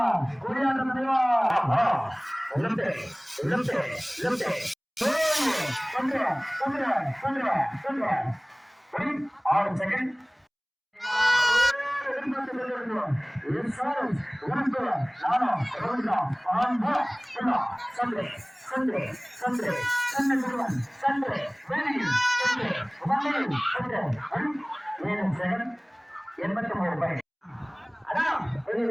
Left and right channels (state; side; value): identical; both; correlation 1.00